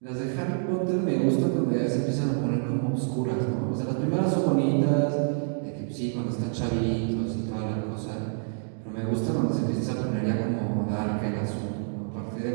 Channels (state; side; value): silent; left; digital silence